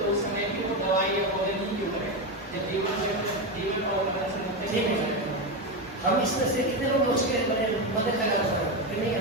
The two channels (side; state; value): both; normal; correlation 0.13